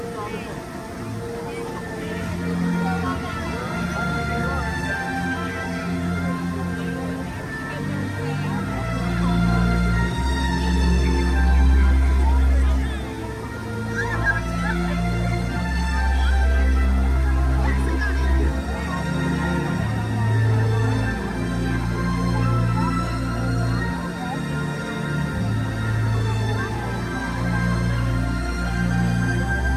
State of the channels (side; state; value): both; identical; correlation 1.00